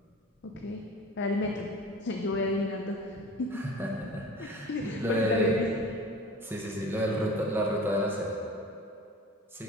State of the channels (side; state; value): both; normal; correlation 0.39